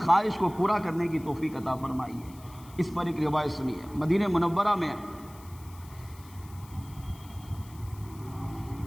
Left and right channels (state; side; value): noise; left; hiss, 23 dB below the sound